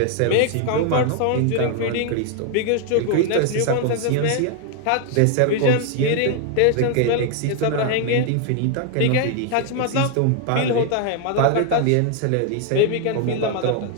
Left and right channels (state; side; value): different; both; correlation 0.00